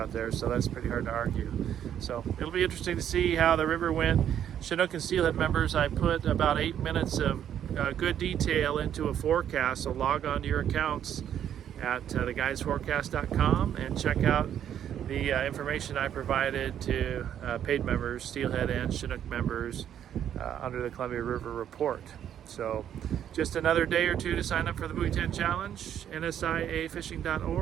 there, so that's pretty hard to argue. So it'll be interesting to see how the river went. Chinook and Steelhead members, I put about 8 minutes of good detail into a forecast, so log on to your accounts at theguidesforecast.com and check out the information I provided to paid members, Steelhead and Chinook members, under the Columbia River Report. So just another day or two to sign up for the Buoy 10 Challenge,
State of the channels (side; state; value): left; quieter; 9.8 dB